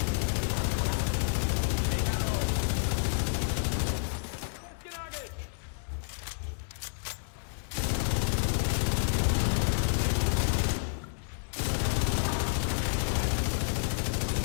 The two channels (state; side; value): silent; right; digital silence